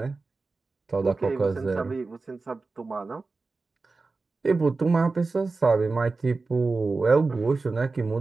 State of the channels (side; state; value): left; quieter; 3.9 dB